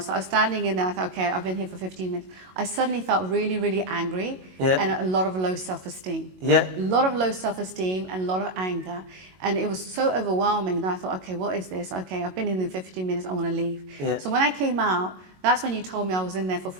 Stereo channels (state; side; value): late; left; 22 ms